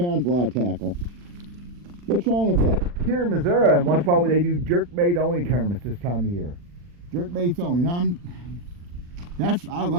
is a lot of tackle. What's wrong with that? Here in Missouri, once in a while they do jerkbait only tournaments this time of year. Jerkbaits only. Now I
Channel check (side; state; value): left; late; 40 ms